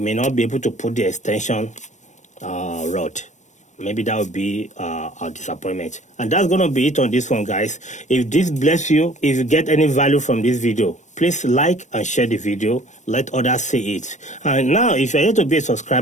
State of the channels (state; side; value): late; right; 0.35 ms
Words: may not be able to put the extension rod. Maybe that would be a disappointment. And that's going to be it on this one, guys. If this bless you, if you get any value from this video, please like and share the video. Let others see it. And now, if you're here to be a